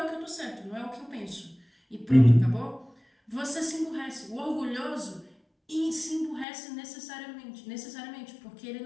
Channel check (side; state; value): right; drops out; at 6.5 s